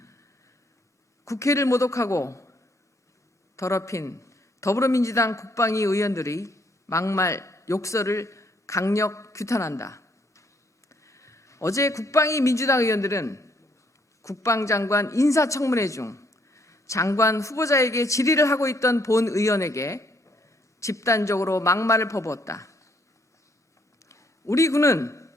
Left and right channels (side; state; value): both; normal; correlation 0.69